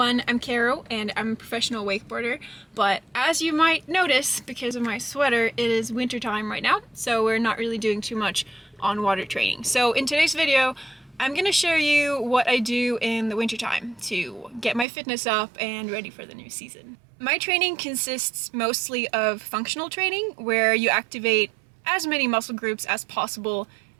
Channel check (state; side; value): drops out; left; at 14.9 s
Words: I'm Carro and I'm a professional wakeboarder, but as you might notice because of my sweater, it is winter time right now, so we're not really doing too much on water training. So in today's video, I'm going to show you what I do in the winter time to get my fitness up and ready for the new season. My training consists mostly of functional training, where you activate as many muscle groups as possible